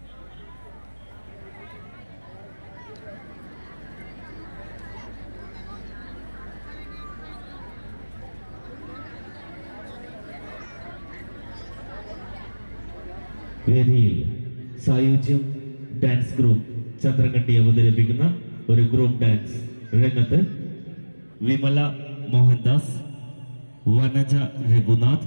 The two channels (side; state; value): both; inverted; correlation -1.00